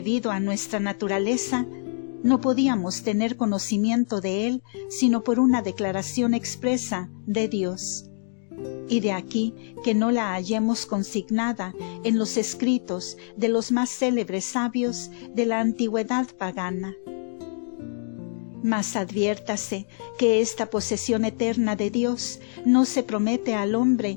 a nuestra naturaleza, no podíamos tener conocimiento de él sino por una declaración expresa de Dios. Y de aquí que no la hallemos consignada en los escritos de los más célebres sabios de la antigüedad pagana. Mas adviértase que esta posesión eterna de Dios no se promete al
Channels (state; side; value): silent; right; digital silence